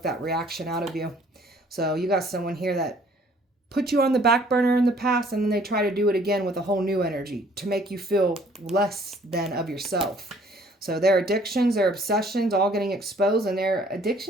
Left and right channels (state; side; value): normal; both; correlation 0.58